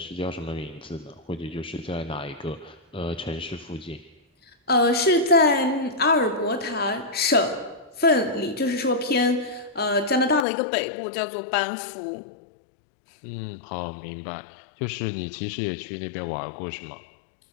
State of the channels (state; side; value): drops out; right; at 10.5 s